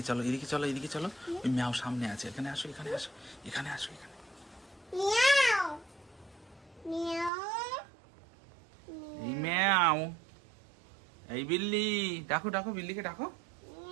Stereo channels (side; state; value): left; drops out; at 7.3 s